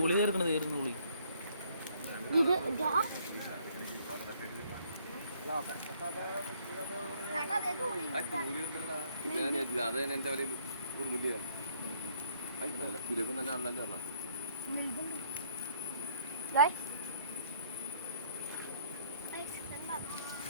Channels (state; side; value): inverted; both; correlation -0.64